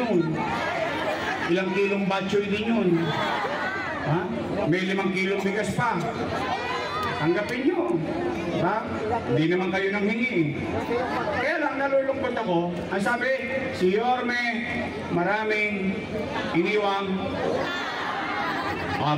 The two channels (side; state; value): both; identical; correlation 1.00